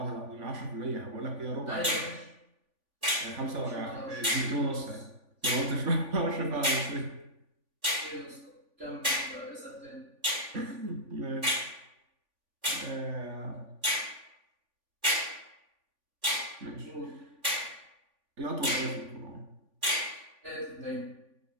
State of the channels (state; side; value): late; left; 3.5 ms